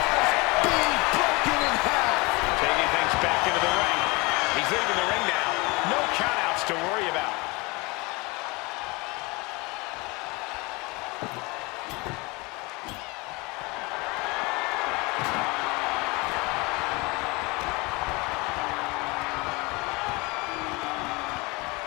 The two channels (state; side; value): quieter; right; 25.6 dB